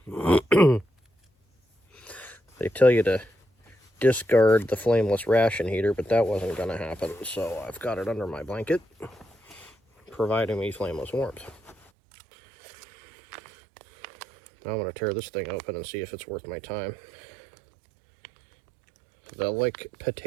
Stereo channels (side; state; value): left; drops out; at 11.8 s